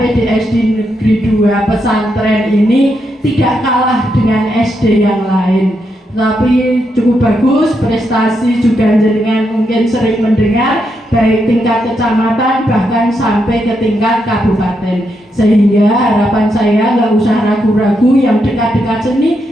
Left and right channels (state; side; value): normal; both; correlation 0.81